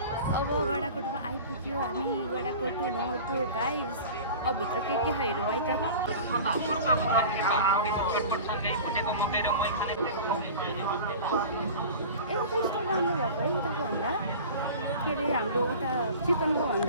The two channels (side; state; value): both; inverted; correlation -0.36